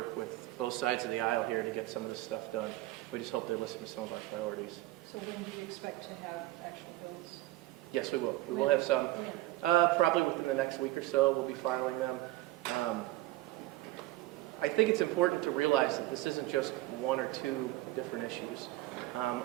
with both sides of the aisle here to get some of this stuff done. We just hope they listen to some of our priorities. So when do you expect to have actual bills? Yes, we will. We will have some. Probably within the next week or so, we'll be filing them. I think it's important to realize that this isn't just 1 or 2 different issues.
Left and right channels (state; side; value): quieter; left; 17.4 dB